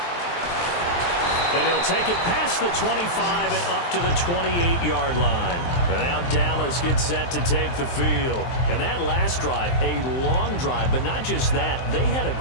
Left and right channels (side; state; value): right; late; 23 ms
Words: And he'll take it past the 25 and up to the 28-yard line. And now Dallas gets set to take the field. And that last drive, a long drive, but not just that. They had a